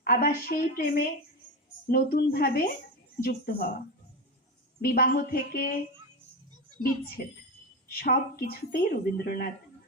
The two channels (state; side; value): normal; both; correlation 0.17